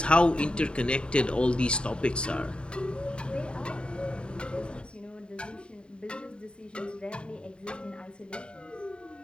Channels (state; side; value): late; right; 0.053 ms